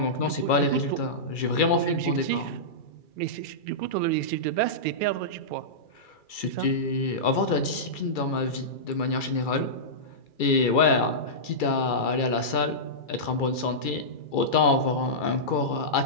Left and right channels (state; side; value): late; right; 2.3 ms